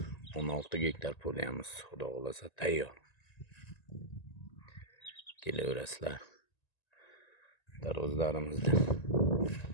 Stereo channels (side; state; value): right; late; 1.9 ms